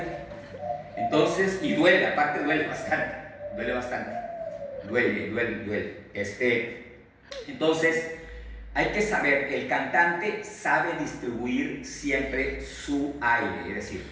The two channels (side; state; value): both; identical; correlation 1.00